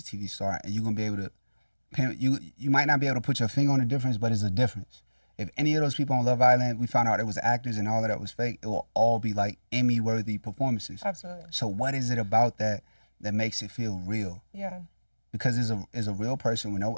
star, and you're going to be able to, you might not be able to put your finger on the difference, but it's a difference. If any of those people on Love Island, we found out it was actors and all of that was fake, it will all be like Emmy-worthy performances. Absolutely. So what is it about that makes it feel real? Yeah. Because it's a real person with no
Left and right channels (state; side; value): inverted; both; correlation -1.00